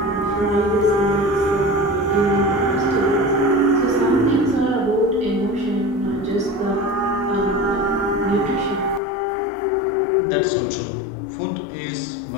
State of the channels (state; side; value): drops out; right; at 9.0 s